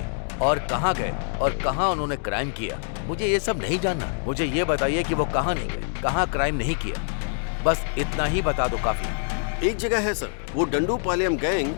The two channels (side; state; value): right; silent; digital silence